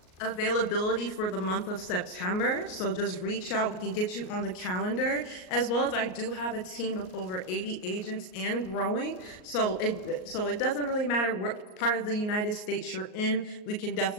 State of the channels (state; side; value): late; right; 38 ms